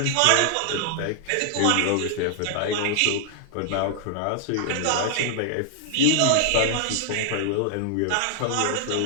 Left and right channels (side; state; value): both; different; correlation 0.00